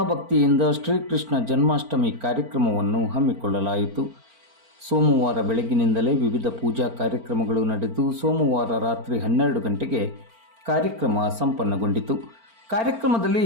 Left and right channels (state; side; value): late; left; 4.4 ms